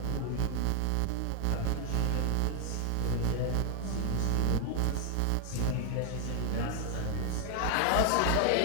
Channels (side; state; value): both; different; correlation 0.00